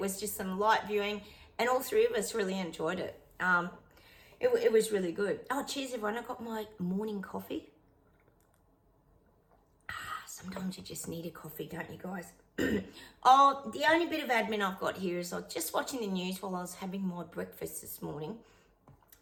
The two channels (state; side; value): identical; both; correlation 1.00